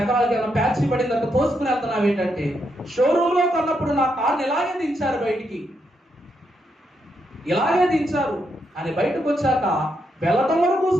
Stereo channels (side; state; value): both; normal; correlation 0.80